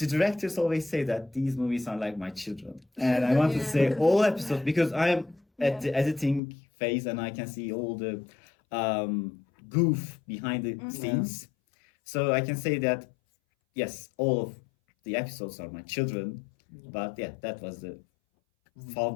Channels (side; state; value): right; drops out; at 6.4 s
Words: directors always say that these movies are like my children. And I want to say all episodes, because I am at the editing phase and I can see all the goof behind the scenes. So I can say that, yes, all of the episodes are my children. But yeah, that was the